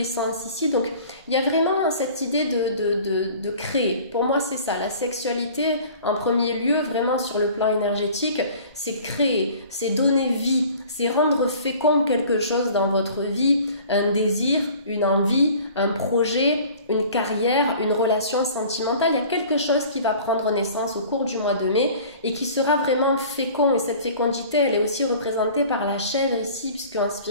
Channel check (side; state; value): both; inverted; correlation -0.47